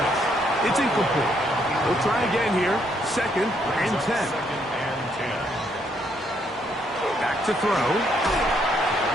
It's incomplete. We'll try again here. Second and 10. Back to throw.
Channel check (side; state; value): both; normal; correlation 0.72